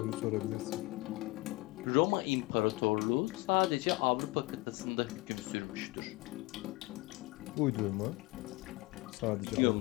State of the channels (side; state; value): right; quieter; 22.8 dB